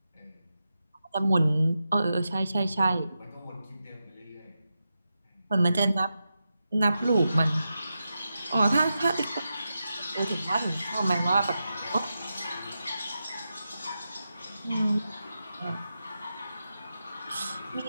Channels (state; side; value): inverted; both; correlation -0.90